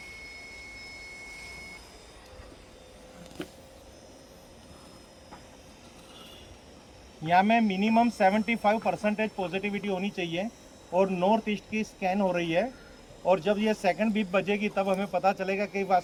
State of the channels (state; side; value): identical; both; correlation 1.00